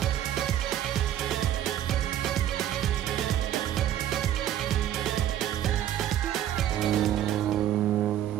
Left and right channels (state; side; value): quieter; left; 11.4 dB